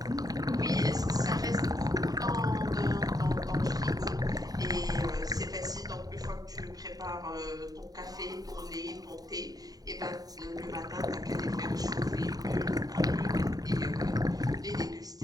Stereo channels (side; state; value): left; late; 0.18 ms